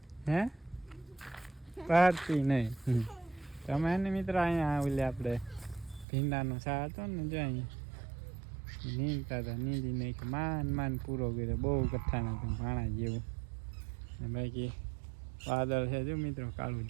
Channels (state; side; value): drops out; left; at 6.1 s